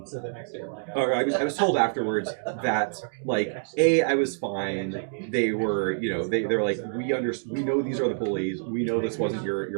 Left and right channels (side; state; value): left; silent; digital silence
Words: or I was told afterwards that like I was fine. They were they're like we know these are the bullies. We know this wasn't